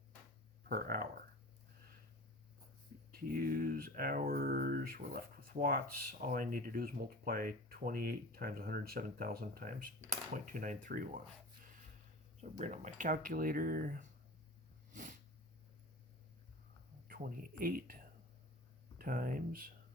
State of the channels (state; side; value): normal; both; correlation 0.36